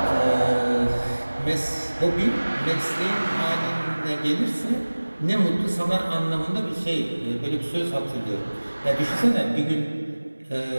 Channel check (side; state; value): both; inverted; correlation -1.00